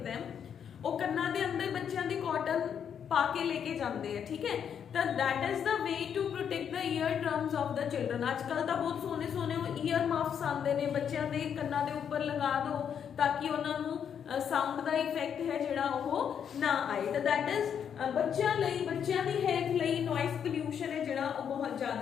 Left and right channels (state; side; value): quieter; right; 8.1 dB